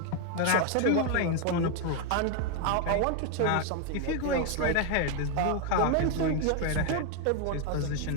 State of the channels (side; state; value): both; different; correlation 0.01